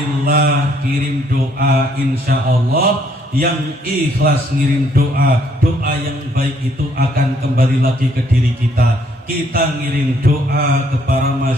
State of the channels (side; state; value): both; normal; correlation 0.67